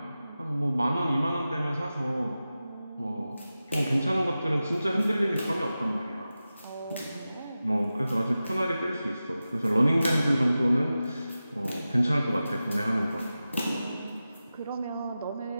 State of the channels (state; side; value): inverted; both; correlation -0.94